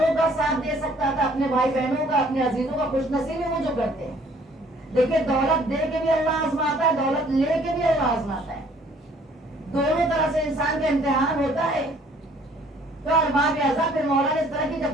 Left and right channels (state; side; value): normal; both; correlation 0.59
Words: کا ساتھ دے سکتا تھا، اپنے بھائی بہنوں کا، اپنے عزیزوں کا خوش نصیبی وہ جو کرتے ہیں. دیکھیے دولت دے کے بھی اللہ آزماتا ہے، دولت لے کے بھی اللہ آزماتا ہے. دونوں طرح سے انسان کا امتحان ہوتا ہے. تو ارباب اعضاء پھر مولا نے اس طرح کی